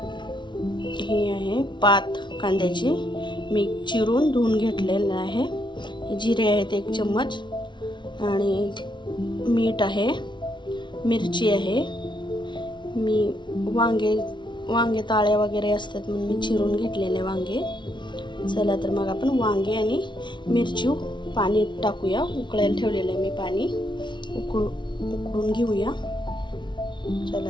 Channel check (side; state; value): right; late; 0.23 ms